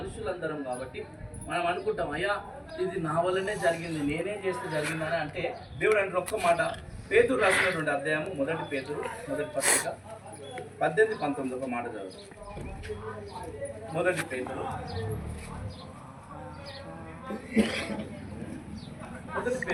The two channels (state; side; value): identical; both; correlation 1.00